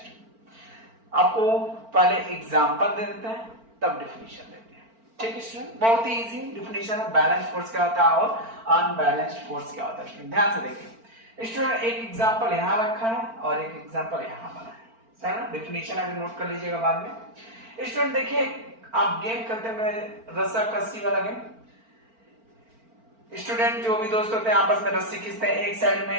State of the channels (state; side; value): late; left; 4.4 ms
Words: आपको पहले एग्जांपल दे देते हैं तब डिफिनीशन देते हैं। ठीक है स्टूडेंट, बहुत ही इजी डिफिनीशन है, बैलेंस्ड फोर्स क्या होता है और अनबैलेंस्ड फोर्स क्या होता है। स्टूडेंट ध्यान से देखिए स्टूडेंट, एक एग्जांपल यहाँ रखा है और एक एग्जांपल यहाँ बना है। सर डिफिनीशन अभी नोट कर लीजिएगा बाद में। स्टूडेंट देखिए, आप गेम खेलते हैं रस्सा कस्सी वाला गेम। स्टूडेंट जो भी दोस्त होते हैं आपस में रस्सी खींचते हैं, एक साइड